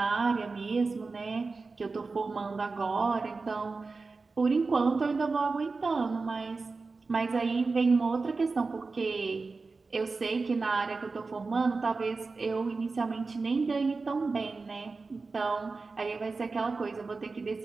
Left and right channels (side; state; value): left; quieter; 4.0 dB